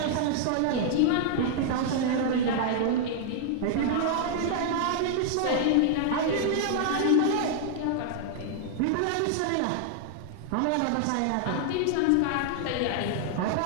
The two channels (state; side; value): different; both; correlation -0.01